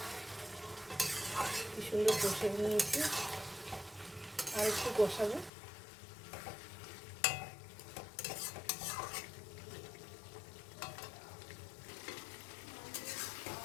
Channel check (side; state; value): right; drops out; at 5.5 s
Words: কি সুন্দর কষে নিয়েছি, আর একটু কষাবো।